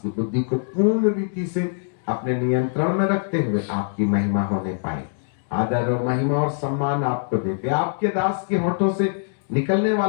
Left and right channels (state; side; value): silent; right; digital silence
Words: की बुद्धि को पूर्ण रीति से अपने नियंत्रण में रखते हुए आपकी महिमा होने पाए। आदर और महिमा और सम्मान आपको देते, आपके दास के होठों से निकलने